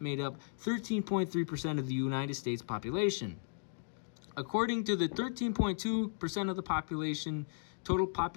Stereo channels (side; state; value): right; silent; digital silence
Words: up 13.3% of the United States population. According to the 13.2% of the population,